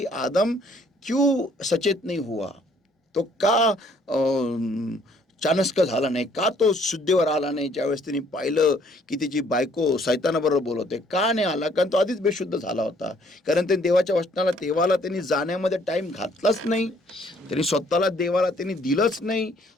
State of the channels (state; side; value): normal; both; correlation 0.63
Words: आदम क्यों सचेत नहीं हुआ, तो का चाणक्य झाला नाही, का तो शुद्धीवर आला नाही ज्यावेळेस त्यांनी पाहिलं की त्याची बायको सैतानाबरोबर बोलवते, का नाही आला, कारण तो आधीच बेशुद्ध झाला होता, कारण त्यांनी देवाच्या वचनाला देवाला त्यांनी जाण्यामध्ये टाइम घातलाच नाही, त्यांनी स्वतःला देवाला त्यांनी दिलंच नाही,